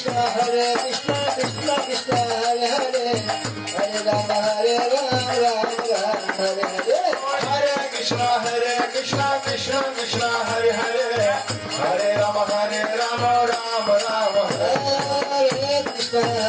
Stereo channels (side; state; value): both; identical; correlation 1.00